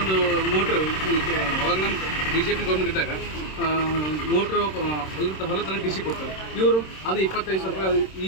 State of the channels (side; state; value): right; late; 26 ms